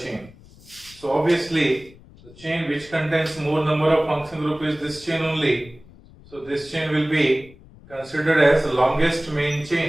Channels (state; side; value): noise; left; rumble, 23 dB below the sound